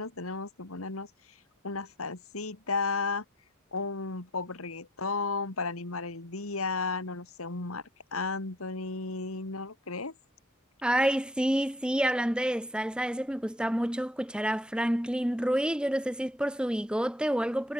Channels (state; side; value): normal; both; correlation 0.60